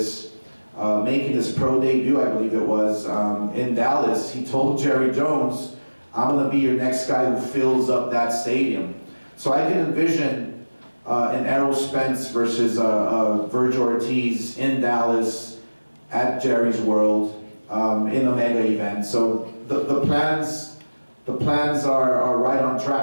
making his pro debut, I believe it was, in Dallas, he told Jerry Jones, I'm going to be your next guy who fills up that stadium. So I can envision an Errol Spence versus Vergil Ortiz in Dallas at Jerry's World, in a mega event. So the plans are right on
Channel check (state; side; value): inverted; both; correlation -1.00